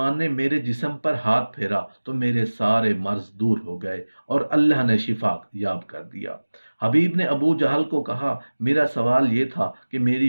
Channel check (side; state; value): both; inverted; correlation -1.00